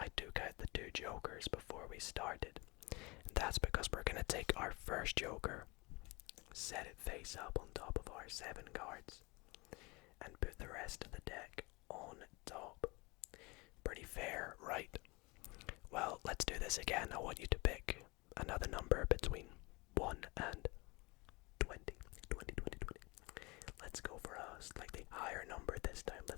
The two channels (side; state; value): right; quieter; 25.5 dB